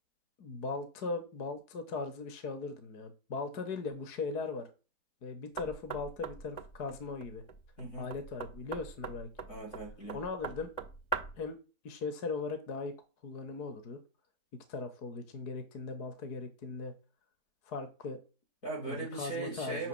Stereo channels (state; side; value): late; right; 4.7 ms